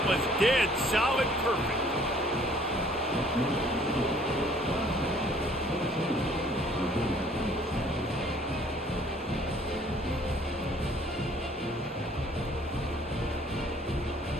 was dead solid perfect.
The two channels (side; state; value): both; normal; correlation 0.57